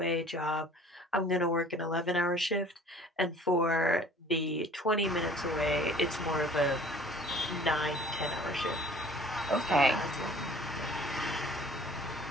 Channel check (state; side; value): normal; both; correlation 0.50